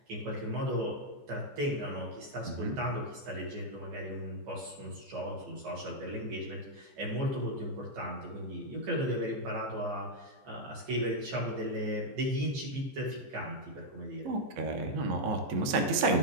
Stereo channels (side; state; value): left; late; 14 ms